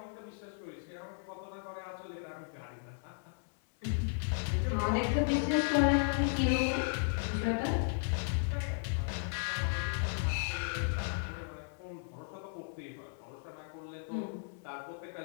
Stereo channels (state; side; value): silent; right; 54 dB below the other